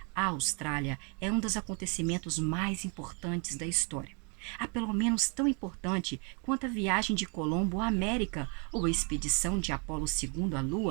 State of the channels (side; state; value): left; quieter; 36.1 dB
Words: à Austrália é um dos acontecimentos mais importantes da história. a pelo menos tão importante quanto a viagem de Colombo à América ou a expedição de Apolo II à